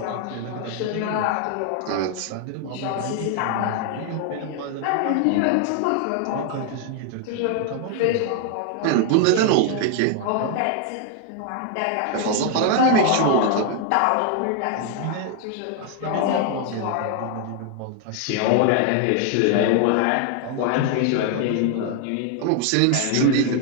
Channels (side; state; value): both; different; correlation 0.00